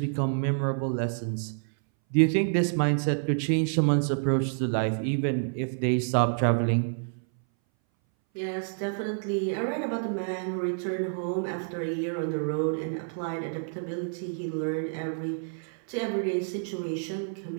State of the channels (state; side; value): silent; left; 59 dB below the other